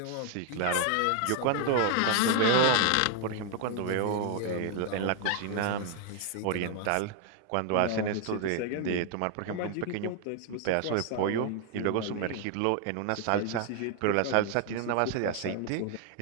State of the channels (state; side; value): different; both; correlation 0.00